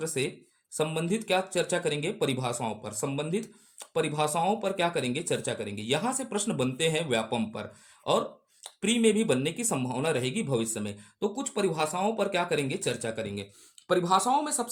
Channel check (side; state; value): both; identical; correlation 1.00